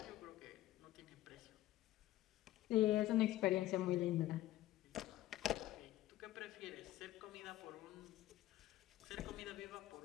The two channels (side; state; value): right; quieter; 14.9 dB